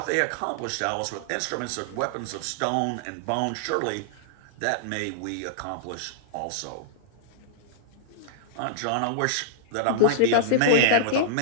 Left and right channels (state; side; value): different; both; correlation -0.01